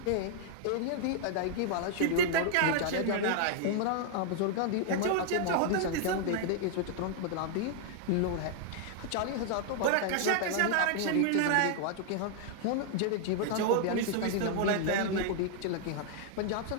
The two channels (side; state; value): both; different; correlation -0.01